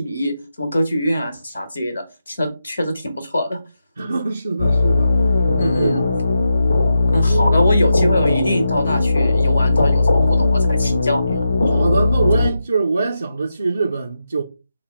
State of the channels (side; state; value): both; inverted; correlation -0.87